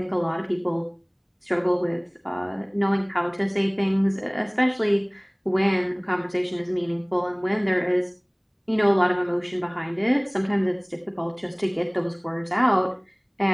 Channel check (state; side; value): identical; both; correlation 1.00